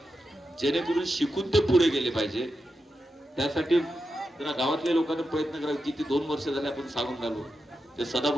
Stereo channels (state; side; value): normal; both; correlation 0.88